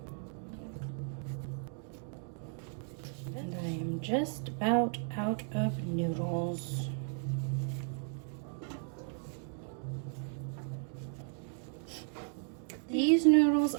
And I am just about out of noodles. These noodles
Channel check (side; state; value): left; silent; 54 dB below the other